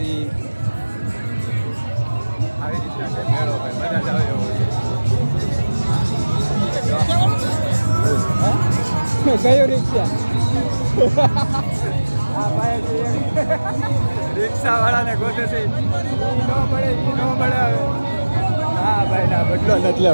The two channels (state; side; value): inverted; both; correlation -1.00